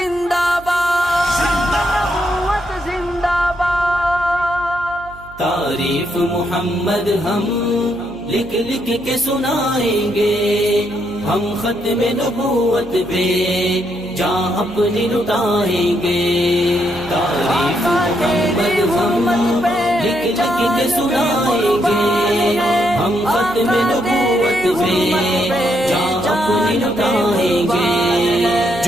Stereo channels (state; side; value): noise; right; hum, 20 dB below the sound